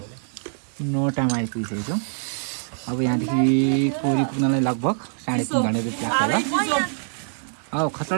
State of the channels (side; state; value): left; silent; digital silence